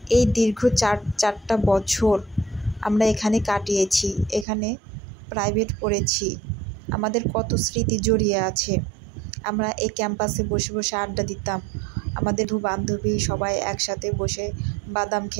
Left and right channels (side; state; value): left; drops out; at 4.5 s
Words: এই দীর্ঘ চারটা বছর আমরা এখানে কাটিয়েছি, এখানে প্রাইভেট পড়েছি, আমাদের কত স্মৃতি জড়িয়ে আছে। আমরা এই ক্যাম্পাসে বসে বসে আড্ডা দিতাম, আমাদের বান্ধবী সবাই একসাথে বসে বাদাম